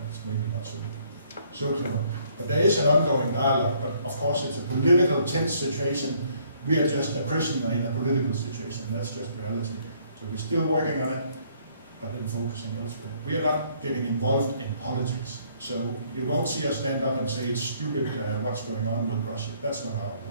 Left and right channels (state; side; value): inverted; both; correlation -0.64